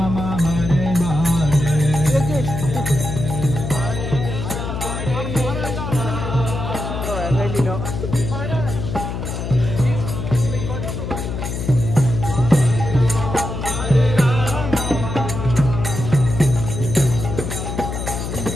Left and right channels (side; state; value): left; noise; hum, 5 dB below the sound